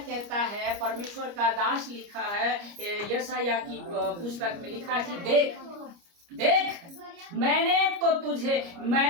कहता है, परमेश्वर का दास लिखा है, यशायाह की पुस्तक में लिखा है कि देख देख मैंने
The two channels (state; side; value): late; left; 29 ms